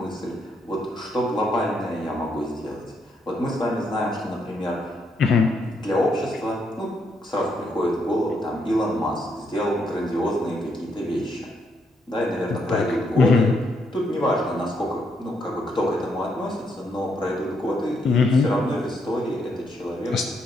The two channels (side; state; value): both; normal; correlation 0.76